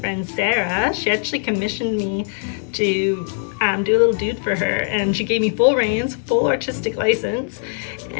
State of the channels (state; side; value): silent; right; 65 dB below the other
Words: Sarah. She actually commissioned me to do a little dude for her, and she gave me full reins, full artistic license,